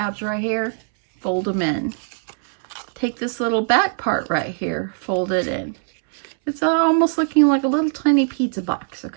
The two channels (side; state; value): left; silent; 64 dB below the other